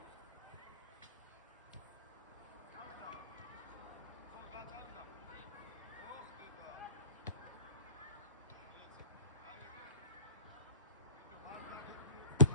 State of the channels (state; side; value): inverted; both; correlation -0.40